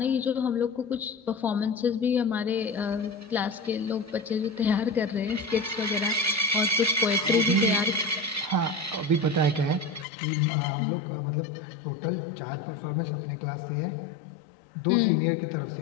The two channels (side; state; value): right; drops out; at 10.1 s